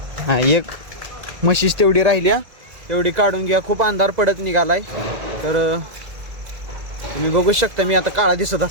हा, एक म्हशीच तेवढी राहिल्या, तेवढी काढून घ्या. खूप अंधार पडत निघालाय. तर तुम्ही बघू शकता, मी आता काळा दिसत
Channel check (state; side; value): late; left; 2.0 ms